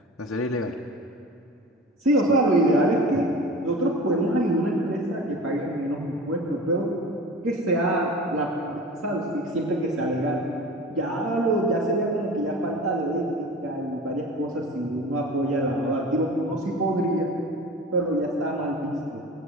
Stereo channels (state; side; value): normal; both; correlation 0.36